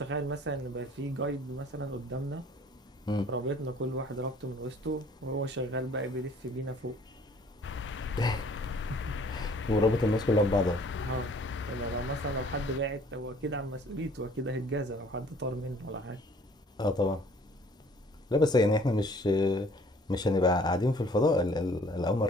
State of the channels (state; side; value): normal; both; correlation 0.55